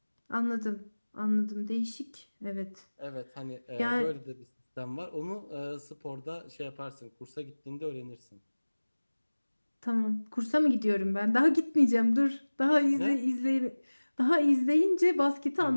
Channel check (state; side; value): inverted; both; correlation -1.00